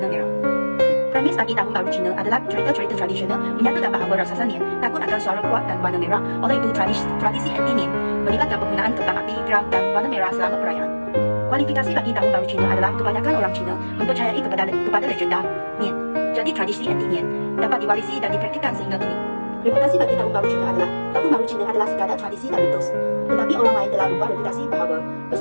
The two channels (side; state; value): both; inverted; correlation -1.00